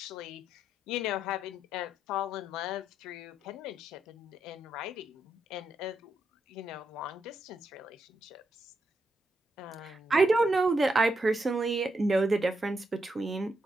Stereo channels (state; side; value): normal; both; correlation 0.81